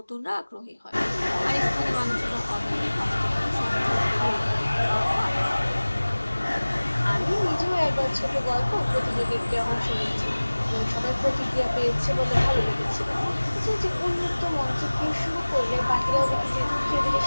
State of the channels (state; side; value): inverted; both; correlation -1.00